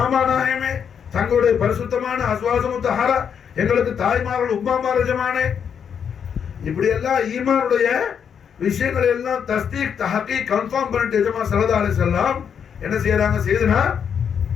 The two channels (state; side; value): quieter; right; 7.5 dB